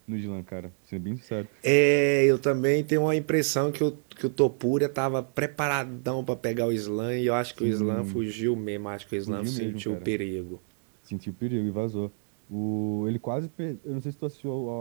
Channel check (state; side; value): silent; left; digital silence